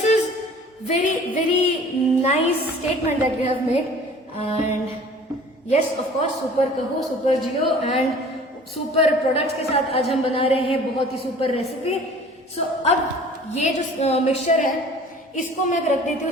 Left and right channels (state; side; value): normal; both; correlation 0.48